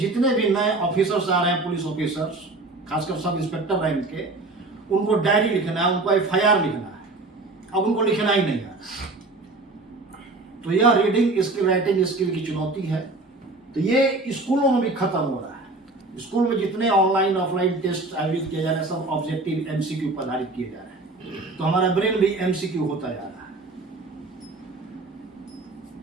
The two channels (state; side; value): quieter; left; 3.1 dB